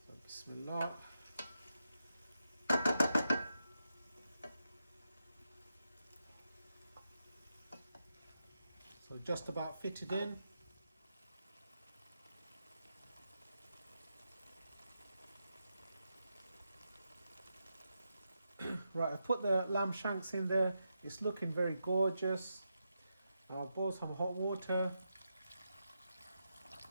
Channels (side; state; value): both; inverted; correlation -0.86